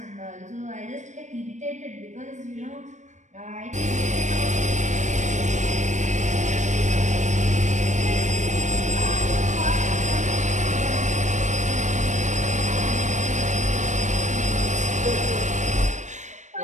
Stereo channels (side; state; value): left; late; 0.35 ms